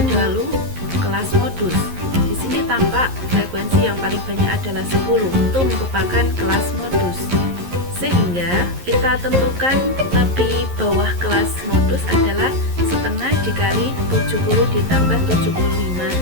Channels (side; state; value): left; late; 11 ms